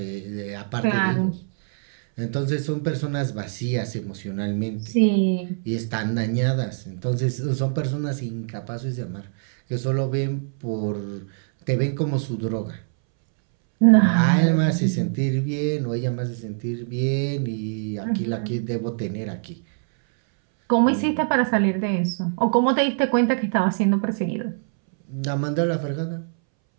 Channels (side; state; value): left; silent; 63 dB below the other